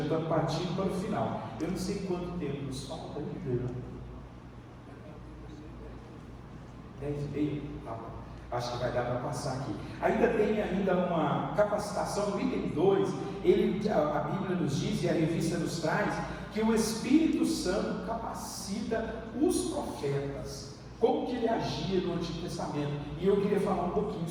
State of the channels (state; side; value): identical; both; correlation 1.00